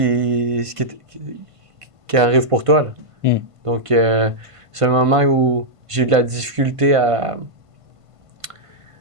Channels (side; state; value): left; late; 1.5 ms